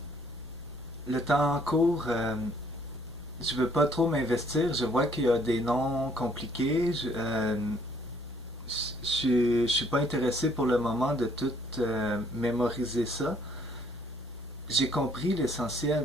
Le temps court, je veux pas trop m'investir. Je vois qu'il y a des noms compliqués. Je suis pas intéressé pour le moment de tout mémoriser ça. J'ai compris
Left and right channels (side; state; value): both; normal; correlation 0.63